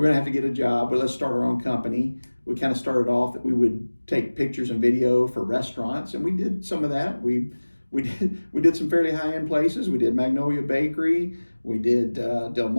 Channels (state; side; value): inverted; both; correlation -1.00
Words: going to have to get a job. But let's start our own company. We kind of started off that we would take pictures and video for restaurants, and we did some of that. We did some fairly high end places. We did Magnolia Bakery. We did